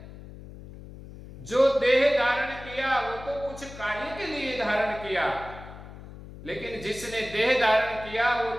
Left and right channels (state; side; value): noise; left; hum, 15 dB below the sound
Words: जो देह धारण किया वो तो कुछ कार्य के लिए धारण किया, लेकिन जिसने देह धारण किया वो